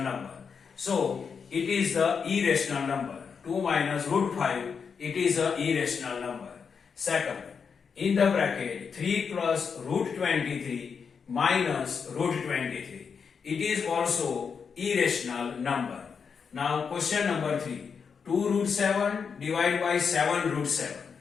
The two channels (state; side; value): quieter; right; 6.1 dB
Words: number. So it is the irrational number. 2 minus root 5, it is a irrational number. Second, in the bracket 3 plus root 23 minus root 23, it is also irrational number. Now question number 3, 2 root 7 divided by 7 root 7.